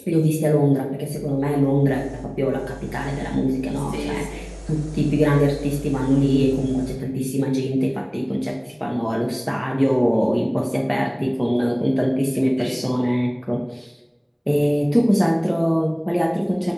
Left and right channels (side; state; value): both; identical; correlation 1.00